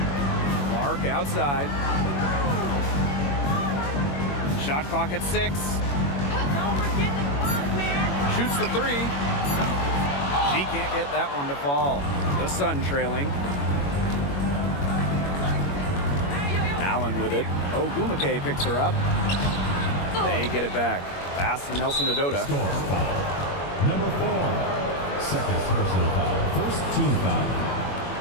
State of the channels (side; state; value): right; late; 21 ms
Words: Clark outside. Shot clock at 6. Shoots the 3. She can't get that one to fall. The Sun trailing. Allen with it. Ogumake picks her up. They get it back. Pass to Nelson Adota. Score foul. Number 4. Second personal foul. First team foul.